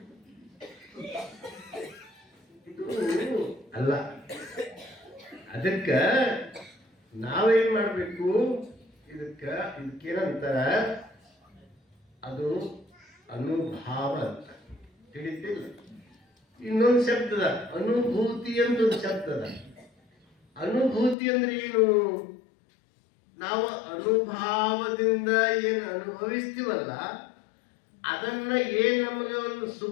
ಇದು ಅಲ್ಲ. ಅದಕ್ಕ ನಾವೇನ್ ಮಾಡ್ಬೇಕು? ಇದಕ್ಕೇನಂತಾರ, ಅದು ಅನುಭಾವ ಅಂತ ತಿಳಿತಿಲ್ಲ. ಇನ್ನೊಂದು ಶಬ್ದದ ಅನುಭೂತಿ ಅಂತ ಒಂದು ಶಬ್ದದ. ಅನುಭೂತಿ ಅಂದ್ರೆ ಏನು? ನಾವು ಅನುಭಾವದಿಂದ ಏನು ಅನುಭವಿಸ್ತೀವಲ್ಲ, ಅದನ್ನ ಏನ್ ನಮಗೆ ಒಂದು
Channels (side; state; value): right; drops out; at 21.2 s